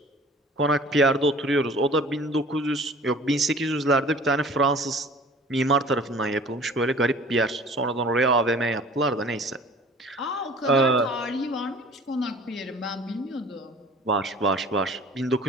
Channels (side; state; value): both; normal; correlation 0.47